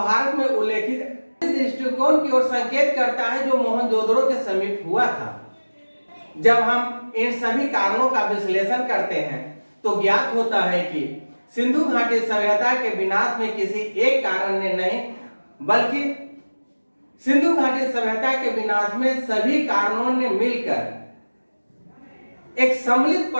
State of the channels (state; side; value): inverted; both; correlation -1.00